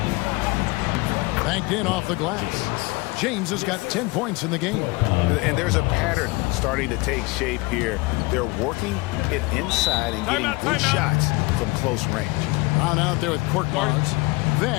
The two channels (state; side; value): quieter; right; 24.1 dB